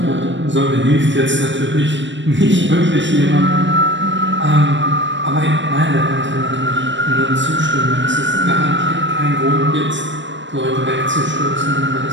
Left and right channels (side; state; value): left; late; 0.54 ms